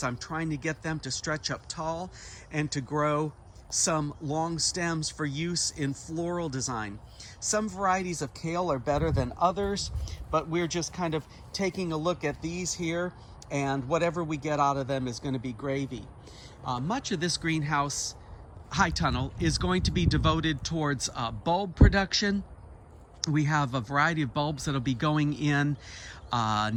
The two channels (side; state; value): both; identical; correlation 1.00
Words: I'm trying to get them to stretch up tall and to grow some long stems for use in floral design. Some varieties of kale are better than others, but we're just kind of taking a look at these here, and whatever we get out of them is going to be gravy. Much of this greenhouse high tunnel is going to be devoted towards bulb production. We have a variety of bulbs that'll be going in